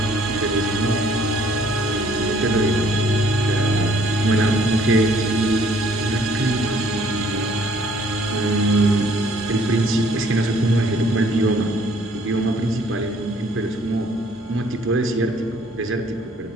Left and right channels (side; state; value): both; normal; correlation 0.61